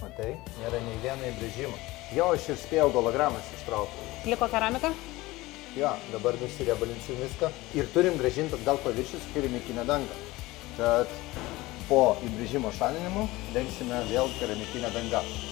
matai, nėra nei vieno įbrėžimo. Jo, aš ir spėjau gologramas ištraukti. Liko keramika? Jo, dabar nusiriebalinsim viską ir turim grąžinti atgal paviršių su keramikinė danga. Tad po įbrėžimo šalinimo dengsime vėl keramikinę dangą.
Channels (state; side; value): quieter; right; 19.7 dB